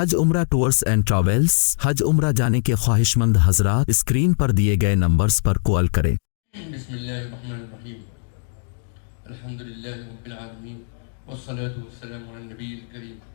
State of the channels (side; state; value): right; silent; digital silence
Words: عمرہ ٹورز اینڈ ٹریولز حج عمرہ جانے کے خواہش مند حضرات اسکرین پر دیے گئے نمبرز پر کال کریں۔ بسم اللہ الرحمن الرحیم، الحمدللہ رب العالمین، والصلاة والسلام علی النبی الکریم